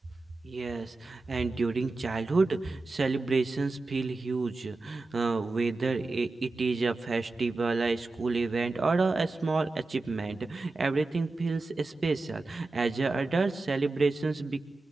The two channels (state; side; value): quieter; left; 3.4 dB